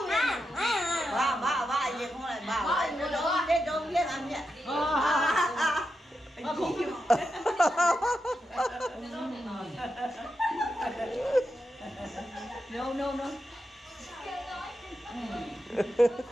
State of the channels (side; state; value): both; normal; correlation 0.87